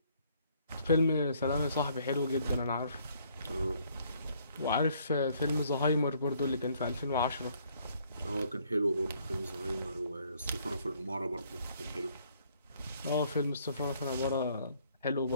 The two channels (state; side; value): inverted; both; correlation -0.65